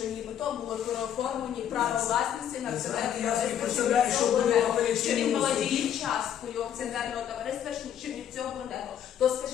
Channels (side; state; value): right; quieter; 9.8 dB